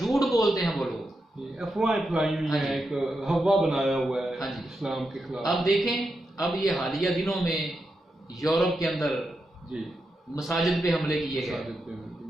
بولتے ہیں وہ لوگ, افواہیں پھیلائی ہوئی ہیں, ایک ہوا بنایا ہوا ہے اسلام کے خلاف. اب دیکھیں, اب یہ حالیہ دنوں میں یورپ کے اندر مساجد پہ حملے کیے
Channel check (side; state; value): both; normal; correlation 0.86